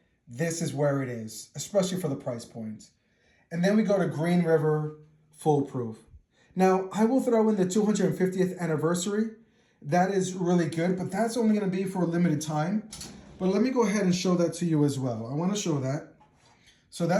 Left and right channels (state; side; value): identical; both; correlation 1.00